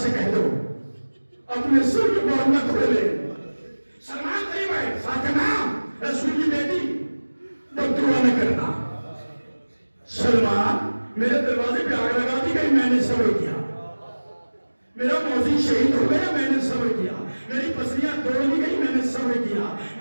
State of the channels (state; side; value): inverted; both; correlation -1.00